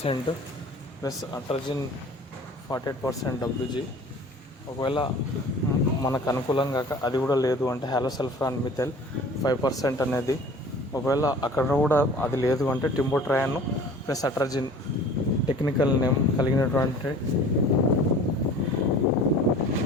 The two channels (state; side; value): normal; both; correlation 0.45